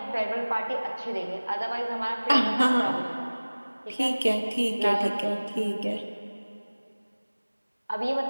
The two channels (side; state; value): both; inverted; correlation -1.00